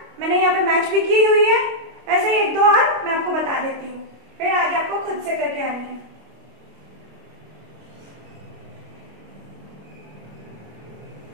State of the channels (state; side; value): late; left; 25 ms